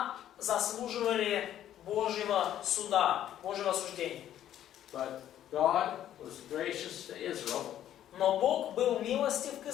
заслуживали Божьего суда, Божьего осуждения. But God was gracious to Israel Но Бог был милостив к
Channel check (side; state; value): right; quieter; 11.5 dB